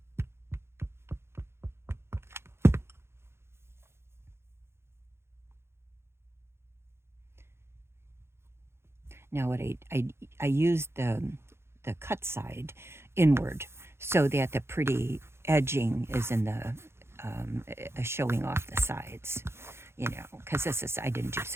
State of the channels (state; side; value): late; left; 0.12 ms